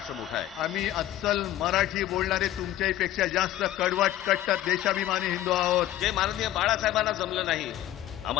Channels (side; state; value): right; quieter; 13.5 dB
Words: मोठा आहे. आम्ही अस्सल मराठी बोलणारे तुमच्याही पेक्षा जास्त कडवट कट्टर देशाभिमानी हिंदू आहोत. जे माननीय बाळासाहेबांना जमलं नाही